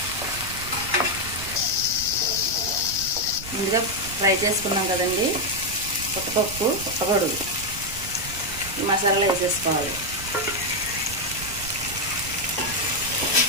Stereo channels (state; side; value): noise; right; rumble, 12 dB below the sound